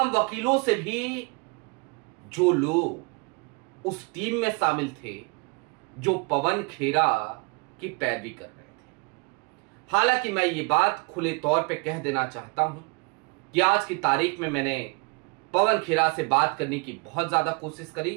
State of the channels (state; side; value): quieter; left; 30.6 dB